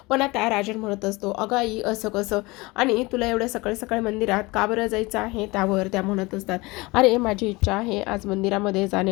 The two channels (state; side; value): quieter; right; 23.1 dB